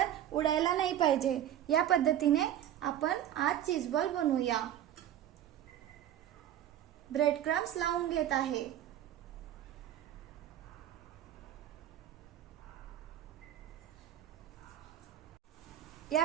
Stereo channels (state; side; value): quieter; left; 11.4 dB